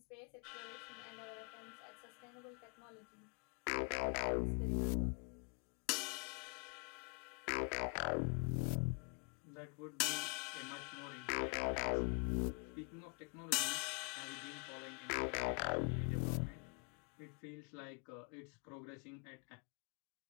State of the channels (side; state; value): right; quieter; 36.3 dB